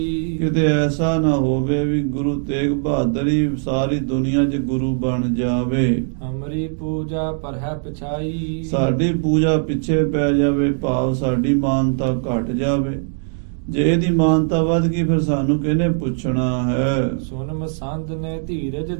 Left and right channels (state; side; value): silent; left; digital silence